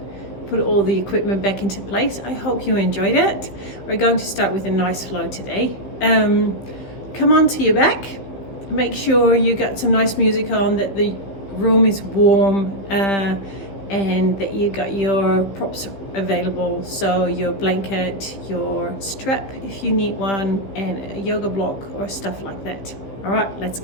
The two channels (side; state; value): right; late; 15 ms